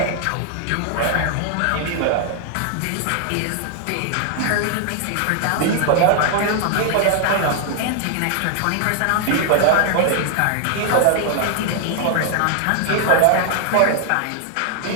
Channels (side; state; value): both; different; correlation 0.00